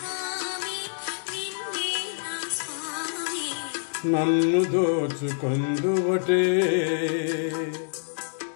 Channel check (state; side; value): silent; right; digital silence